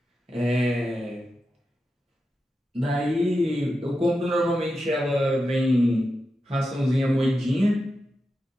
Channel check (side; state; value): both; normal; correlation 0.90